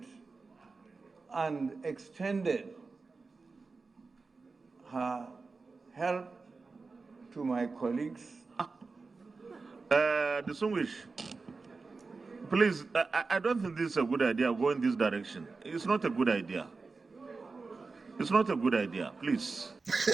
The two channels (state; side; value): quieter; left; 4.1 dB